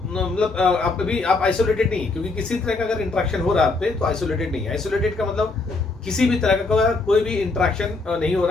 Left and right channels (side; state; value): right; quieter; 3.6 dB